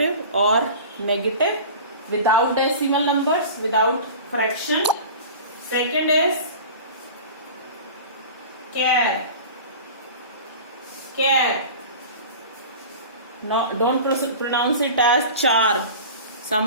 or negative without decimal numbers, without fraction. Second is char. No, don't pronounce it as char.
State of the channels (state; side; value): inverted; both; correlation -0.36